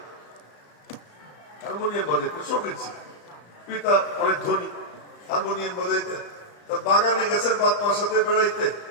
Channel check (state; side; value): late; right; 35 ms